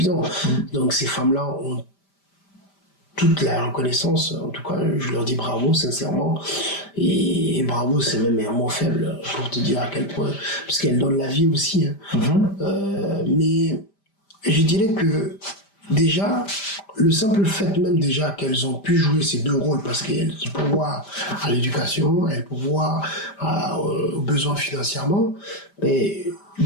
Donc ces femmes-là ont toute la reconnaissance. En tout cas, je leur dis bravo, sincèrement. Et bravo, c'est même un mot faible pour te dire à quel point. Parce qu'elles donnent la vie aussi. Hein. Mais je dirais que déjà, le simple fait même déjà qu'elles ont pu jouer ces deux rôles, parce qu'elles pourvoient à l'éducation, elles pourvoient aux besoins financièrement, mais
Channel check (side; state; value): right; late; 5.1 ms